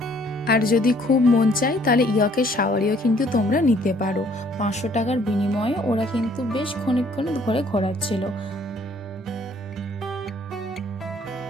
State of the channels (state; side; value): normal; both; correlation 0.61